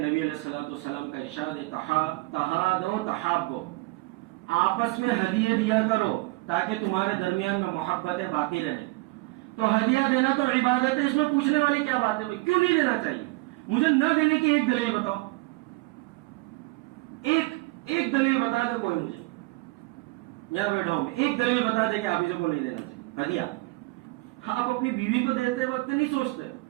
علیہ الصلوۃ والسلام کا ارشاد ہے تہادو تحابو, آپس میں ہدیے دیا کرو تاکہ تمہارے درمیان میں محبتیں باقی رہیں. تو ہدیہ دینا تو عبادت ہے, اس میں پوچھنے والی کیا بات ہے بھائی, کیوں نہیں دینا چاہیے؟ مجھے نہ دینے کی ایک دلیل بتاؤ, ایک دلیل بتا دے کوئی مجھے, یہاں بیٹھا ہوں ایک دلیل بتا دے کہ حافظوں کو نہیں دینا چاہیے ہدیہ. آپ اپنی بیوی کو دیتے وقت نہیں سوچتے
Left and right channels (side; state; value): left; quieter; 23.8 dB